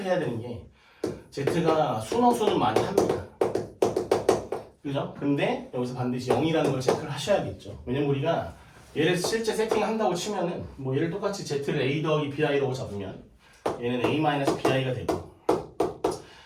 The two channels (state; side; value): identical; both; correlation 1.00